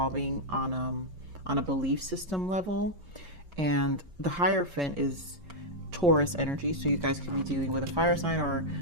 on a belief system level, and the Hierophant is Taurus energy. So you guys can be dealing with a fire sign, or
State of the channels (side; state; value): left; late; 5.2 ms